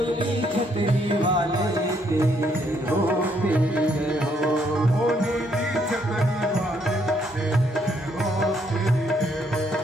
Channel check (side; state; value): both; normal; correlation 0.71